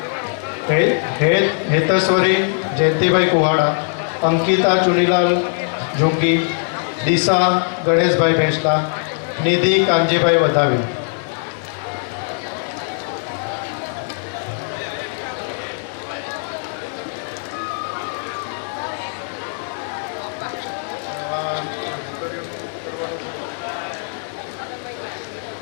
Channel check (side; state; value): right; silent; 63 dB below the other